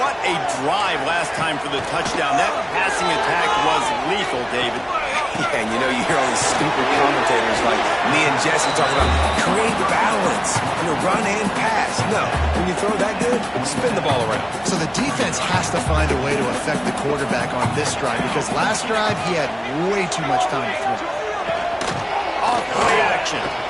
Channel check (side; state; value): both; identical; correlation 1.00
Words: a drive last time for the touchdown. That passing attack was lethal, David. Yeah, and you know, you hear all these stupid commentators like me and Jesse talking about create balance, run and pass. No, when you throw that good, spin the ball around. So the defense has to find a way to affect the quarterback on this drive because last drive he had way too much time to throw. Off play action.